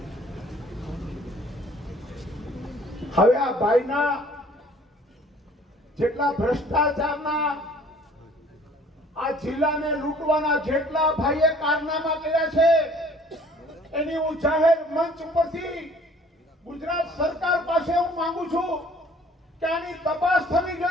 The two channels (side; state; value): both; normal; correlation 0.55